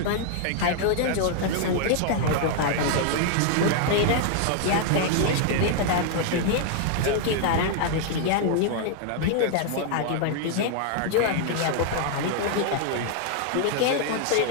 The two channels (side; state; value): both; different; correlation 0.00